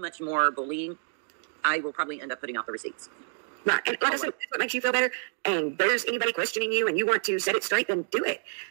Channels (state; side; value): silent; left; digital silence